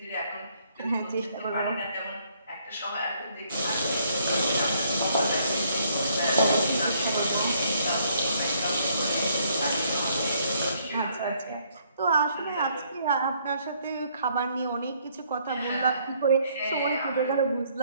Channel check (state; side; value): inverted; both; correlation -0.67